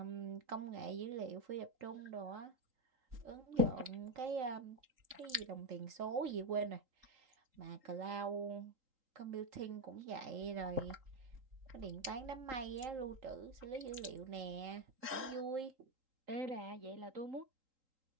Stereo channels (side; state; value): left; late; 3.8 ms